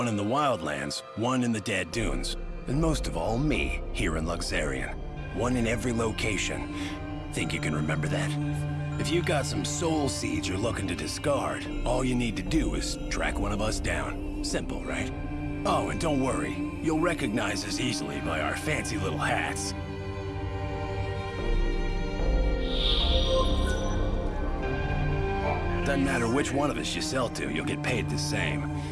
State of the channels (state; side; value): identical; both; correlation 1.00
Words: in the Wildlands, 1 in the Dead Dunes, and most of all, me, here in Luxerion. 1 in every location. Think you can remember that? If you've got some soul seeds you're looking to discard, all you need to do is track one of us down. Simple, right? Oh, and don't worry. You'll recognize us easily by our fancy little hats. Doesn't matter which one of us you sell to, you'll get paid the same.